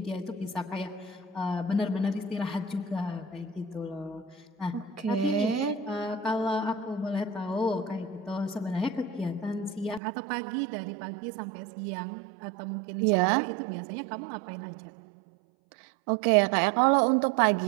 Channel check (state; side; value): drops out; left; at 10.0 s